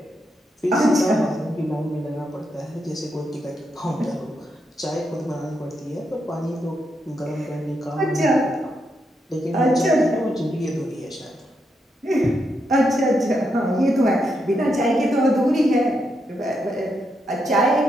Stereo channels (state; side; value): normal; both; correlation 0.82